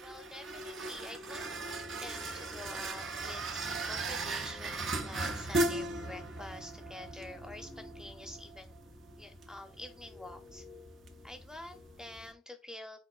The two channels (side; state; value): both; normal; correlation 0.62